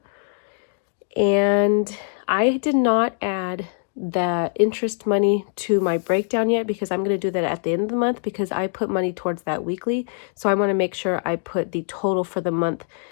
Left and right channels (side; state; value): right; silent; digital silence